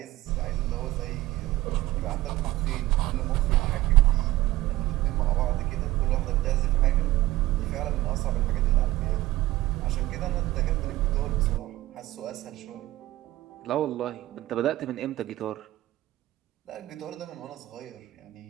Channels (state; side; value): quieter; left; 16.9 dB